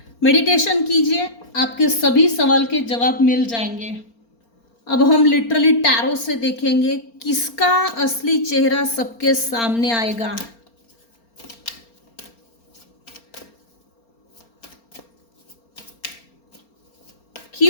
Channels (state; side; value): late; right; 4.4 ms